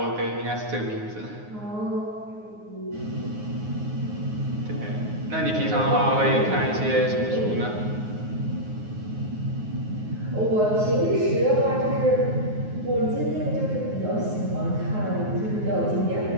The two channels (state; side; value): late; left; 9.5 ms